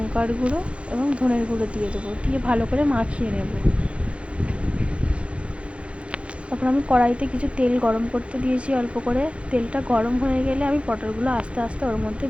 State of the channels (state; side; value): late; left; 0.060 ms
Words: গুঁড়ো এবং ধনের গুঁড়ো দিয়ে দেবো, দিয়ে ভালো করে মাখিয়ে নেব। তারপর আমি কড়াইতে কিছু তেল গরম করতে দিয়েছি অল্প করে। তেলটা গরম হয়ে গেলে আমি পটলগুলো আস্তে আস্তে ওর মধ্যে